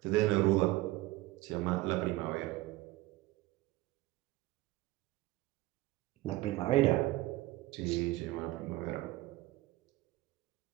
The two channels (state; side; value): quieter; left; 18.4 dB